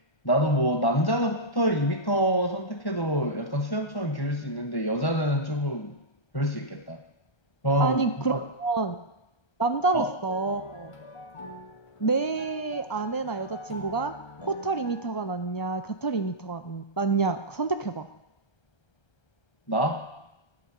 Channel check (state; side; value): late; right; 1.3 ms